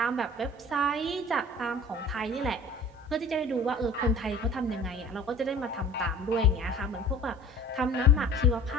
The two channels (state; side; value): normal; both; correlation 0.43